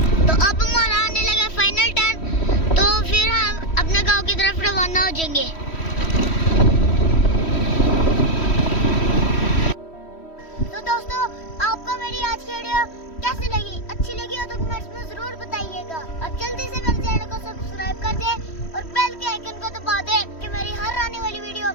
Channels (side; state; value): right; late; 3.1 ms